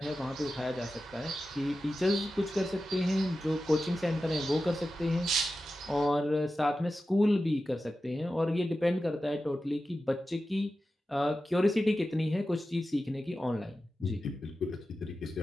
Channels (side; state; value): both; normal; correlation 0.93